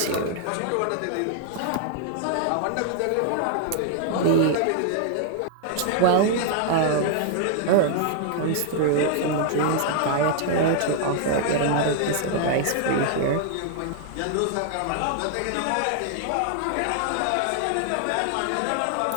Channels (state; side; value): different; both; correlation -0.01